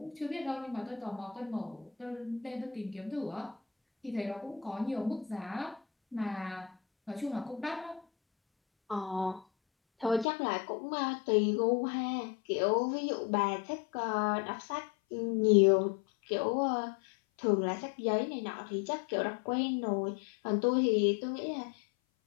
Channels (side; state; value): right; drops out; at 10.2 s